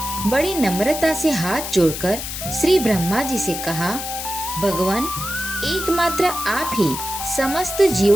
बड़ी नम्रता से हाथ जोड़कर श्री ब्रह्मा जी से कहा, भगवान, एकमात्र आप ही समस्त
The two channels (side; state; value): left; noise; hiss, 6 dB below the sound